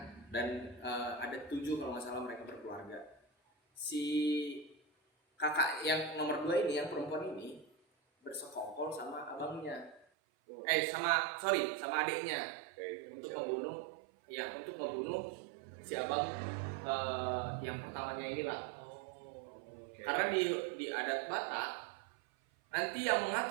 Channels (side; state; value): left; drops out; at 10.1 s